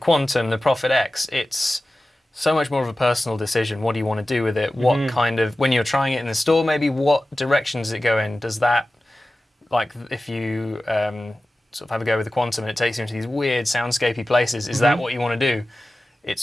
the Prophet X, it's so much more of a personal decision. What do you want to do with it? What kind of, when you're trying it in the store, maybe what direction does it go in? Does that, like if you sort of have a go with the Quantum and it takes you into these weird soundscapey places, is that what you want to do?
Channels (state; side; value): normal; both; correlation 0.96